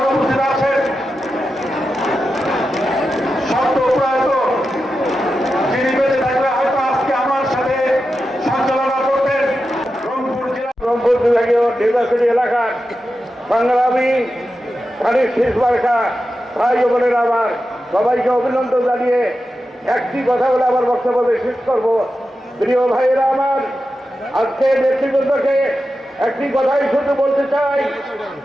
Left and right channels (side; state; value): both; normal; correlation 0.91